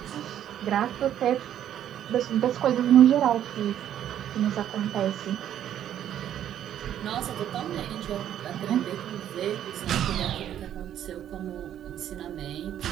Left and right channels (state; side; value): quieter; left; 10.7 dB